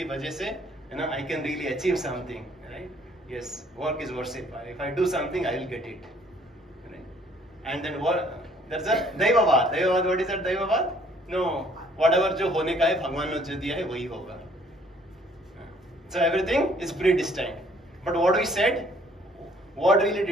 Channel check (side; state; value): both; normal; correlation 0.61